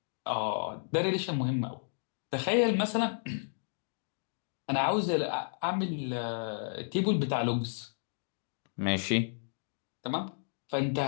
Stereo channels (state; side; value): silent; right; digital silence